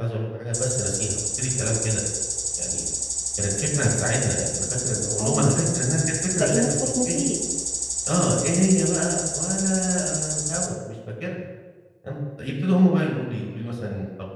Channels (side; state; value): both; identical; correlation 1.00